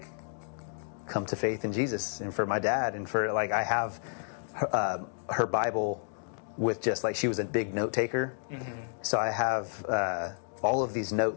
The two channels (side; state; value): right; silent; digital silence